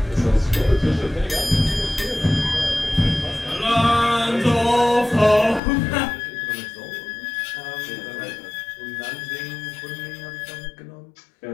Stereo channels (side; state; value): right; drops out; at 5.6 s